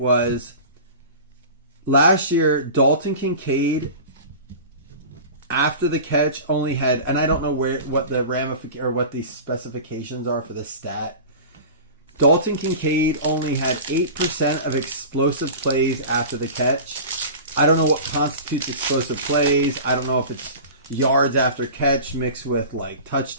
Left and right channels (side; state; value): both; inverted; correlation -0.35